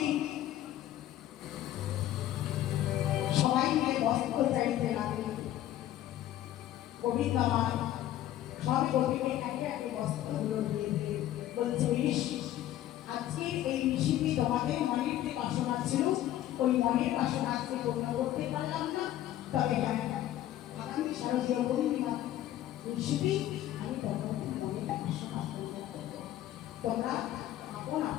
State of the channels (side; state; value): right; quieter; 13.1 dB